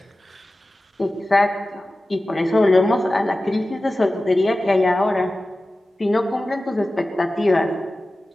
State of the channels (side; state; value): both; normal; correlation 0.95